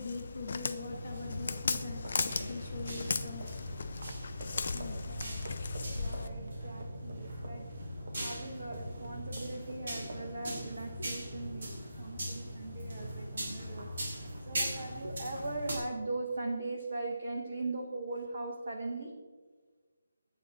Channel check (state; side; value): inverted; both; correlation -0.85